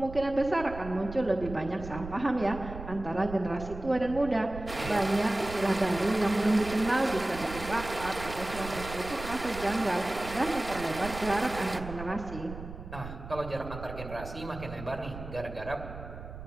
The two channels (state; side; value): noise; right; rumble, 11 dB below the sound